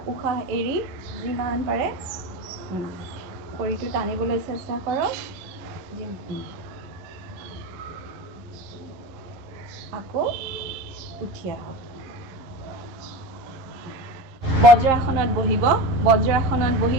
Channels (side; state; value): left; late; 11 ms